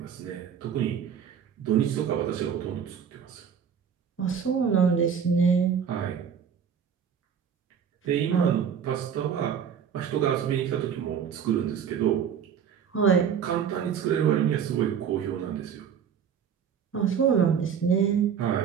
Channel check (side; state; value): left; quieter; 7.7 dB